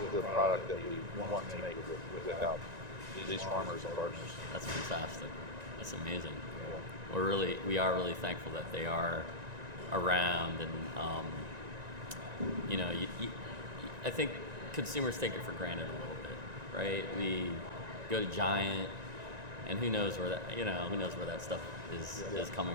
the product that we want to make without these farmers and partners. That's fantastic. That's amazing. We are really thankful that they are around, and I think consumers take it for granted a little bit, right? We go to Giant, and who knows where that stuff is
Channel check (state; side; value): late; left; 1.9 ms